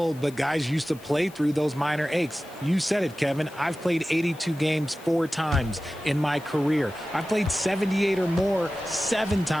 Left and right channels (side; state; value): left; noise; hiss, 23 dB below the sound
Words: but guys used to play through those minor aches. You said it, Kevin. I've played 82 games 4 times in my career. I've played 78 or more 7